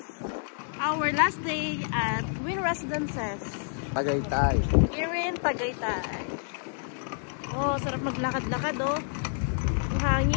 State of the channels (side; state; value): right; silent; 59 dB below the other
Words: our last day at Wynn Residences. Tagaytay. Here in Tagaytay. Oh, sarap maglakad-lakad oh. Ang